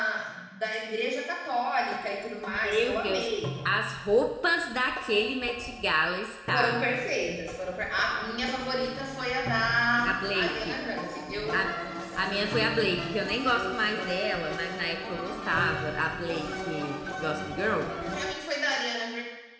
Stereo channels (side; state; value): both; identical; correlation 1.00